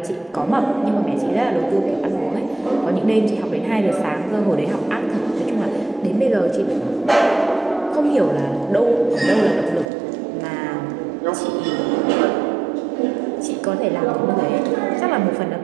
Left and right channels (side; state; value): left; drops out; at 9.9 s